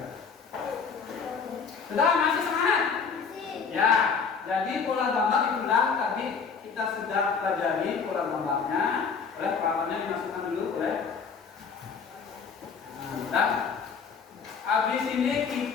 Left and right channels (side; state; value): right; quieter; 5.8 dB